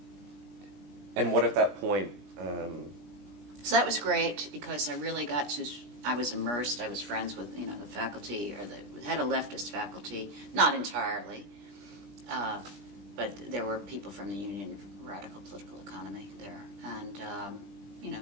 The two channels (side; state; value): left; late; 20 ms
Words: And what at that point? So that was great because I really got to. I was immersed. I was friends with the faculty, had a leftist faculty, not entirely, but there were people from the Union of Radical Political Economy there, and